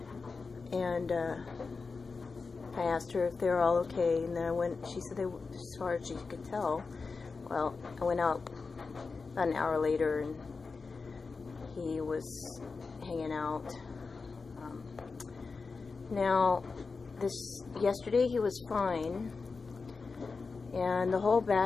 and I asked her if they were all okay, and then she said they, as far as she could tell. Well, I went out about an hour later, and he was hanging out. Now, yesterday he was fine, and the whole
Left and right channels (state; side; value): quieter; right; 4.5 dB